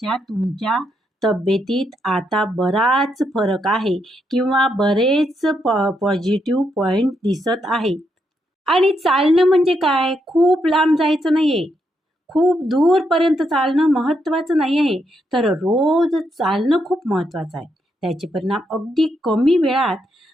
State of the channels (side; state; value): both; normal; correlation 0.79